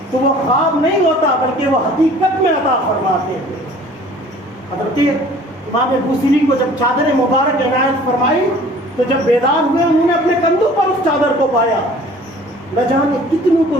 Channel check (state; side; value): normal; both; correlation 0.50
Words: تو وہ خواب نہیں ہوتا بلکہ وہ حقیقت میں عطا فرماتے ہیں۔ حضرت امام بوصیری کو جب چادر مبارک عنایت فرمائی تو جب بیدار ہوئے انہوں نے اپنے کندھوں پر اس چادر کو پایا۔ نہ جانے کتنوں کو